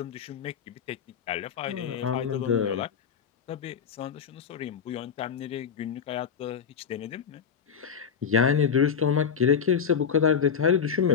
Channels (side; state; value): right; quieter; 7.0 dB